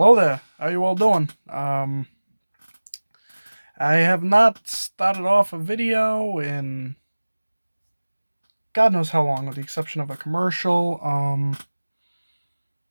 there. How you all doing? I have not started off a video in God knows how long, with the exception of a commercial.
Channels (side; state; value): both; inverted; correlation -1.00